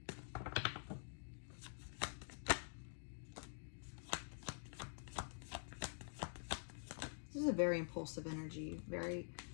This is a very impulsive energy.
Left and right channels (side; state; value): right; silent; digital silence